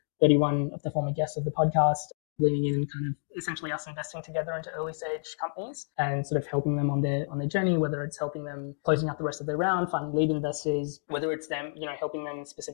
of the former guests of the podcast leaning in and kind of essentially us investing together into early stage companies and sort of helping them on their journey, whether it's helping them closing out the rest of their round, finding lead investors, whether it's them, helping them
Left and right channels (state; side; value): silent; right; digital silence